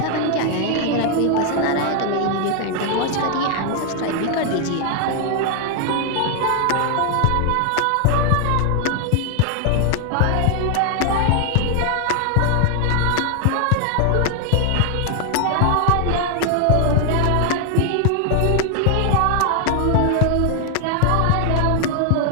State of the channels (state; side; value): different; both; correlation 0.00